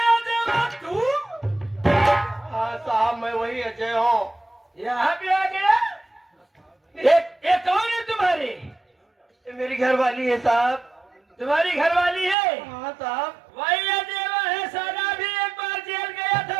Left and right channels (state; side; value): drops out; left; at 12.4 s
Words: अजय तू? हाँ साहब मैं वही अजय हूँ। यहाँ पे आ गया? ये कौन है तुम्हारी? मेरी घरवाली है साहब। तुम्हारी घरवाली है? हाँ साहब। वही अदेवा है, सारा भी एक बार जेल गया